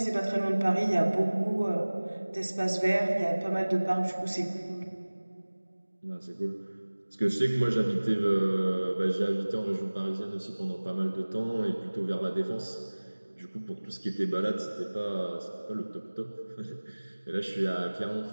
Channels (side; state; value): both; inverted; correlation -1.00